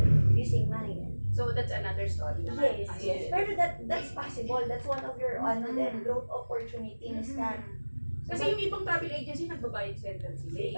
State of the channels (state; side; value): inverted; both; correlation -1.00